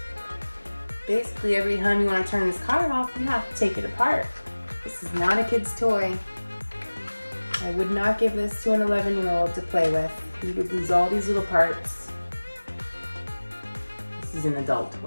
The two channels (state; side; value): inverted; both; correlation -1.00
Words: Basically, every time you want to turn this car off, you have to take it apart. This is not a kid's toy. I would not give this to an 11-year-old to play with. He would lose all these little parts. This is an adult